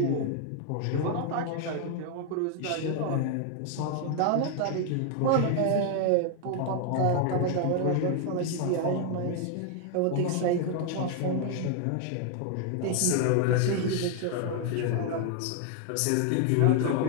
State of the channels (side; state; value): both; different; correlation 0.00